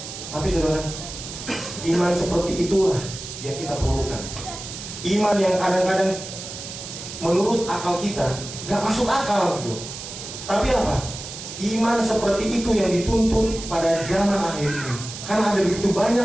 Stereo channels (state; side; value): noise; right; hiss, 10 dB below the sound